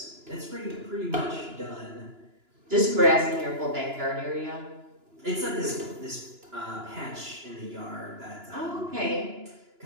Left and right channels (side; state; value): left; late; 2.9 ms